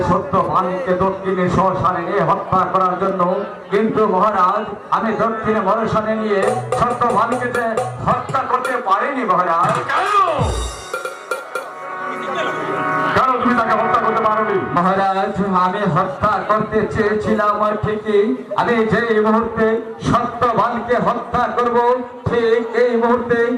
সত্যবানকে দক্ষিণে শ্মশানে নিয়ে হত্যা করার জন্য, কিন্তু মহারাজ আমি দক্ষিণে শ্মশানে নিয়ে সত্যবানকে হত্যা করতে পারিনি। মহারাজ, কেন তুমি তাকে হত্যা করতে পারোনি? মহারাজ, আমি হত্যা করতে চেয়েছিলাম ঠিকই, আমি যেই মুহূর্তে সত্যবানকে হত্যা করব ঠিক এই মুহূর্তে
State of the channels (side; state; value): both; identical; correlation 1.00